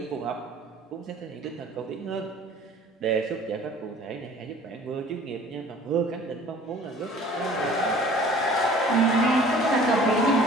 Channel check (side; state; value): both; normal; correlation 0.49